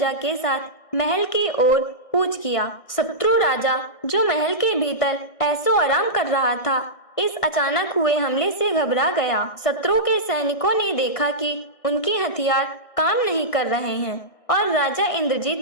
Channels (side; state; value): right; late; 1.6 ms